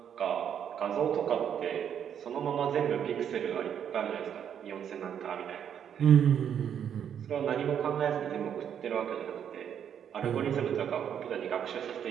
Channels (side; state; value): left; quieter; 8.7 dB